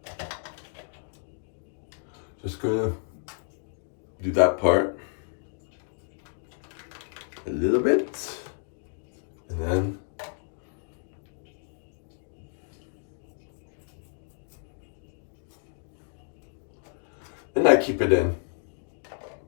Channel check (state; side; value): silent; right; digital silence